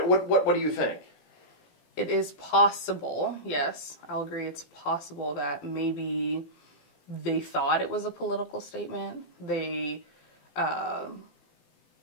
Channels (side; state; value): right; late; 17 ms